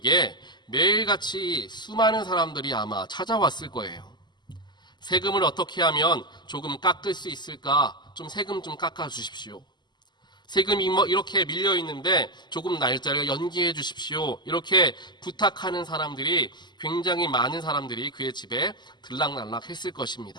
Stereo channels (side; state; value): right; late; 0.21 ms